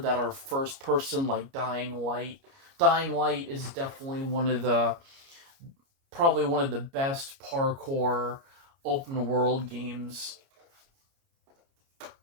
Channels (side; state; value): left; late; 29 ms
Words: are first person, like Dying Light. Dying Light is definitely probably one of the best parkour open world games.